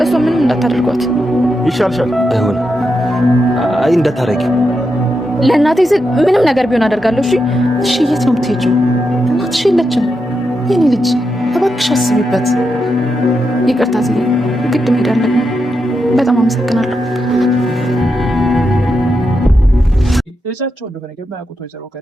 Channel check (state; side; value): normal; both; correlation 0.86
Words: እሷ ምንም እንዳታደርጓት ይሻልሻል። አይሆን አይ እንዳታረጊው። ለእናቴ ስል ምንም ነገር ቢሆን አደርጋለሁ። እሺ እሺ የት ነው የምትሄጂው? እናትሽ የለችም። የኔ ልጅ እባክሽ አስቢበት። ይቅርታ ዝዬ ግድ መሄድ አለብኝ። በጣም አመሰግናለሁ። ልጃቸው እንደሆነ የማያውቁት ወይዘሮ